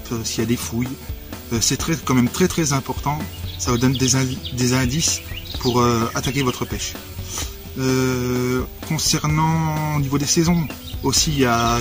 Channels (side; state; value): both; identical; correlation 1.00